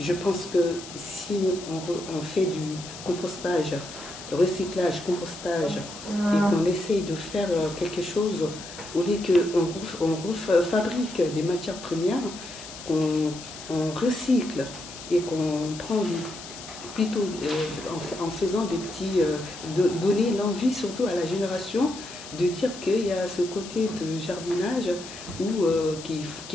pense que si on fait du compostage, recyclage, compostage, et qu'on essaye de faire quelque chose, au lieu qu'on fabrique des matières premières, qu'on recycle et qu'on prend plutôt en faisant des petits, donner l'envie surtout à la génération de dire qu'il y a ce côté de jardinage où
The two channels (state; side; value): noise; left; hiss, 14 dB below the sound